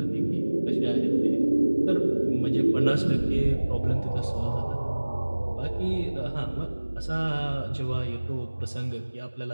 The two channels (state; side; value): inverted; both; correlation -1.00